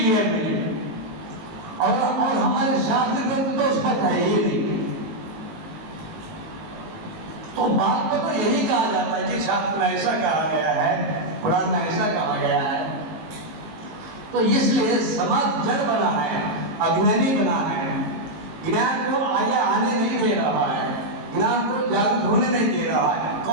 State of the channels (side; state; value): left; late; 19 ms